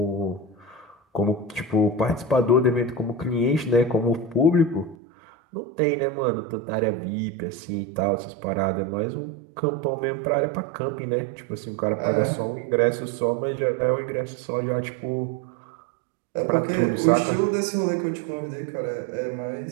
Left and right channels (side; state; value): left; drops out; at 5.0 s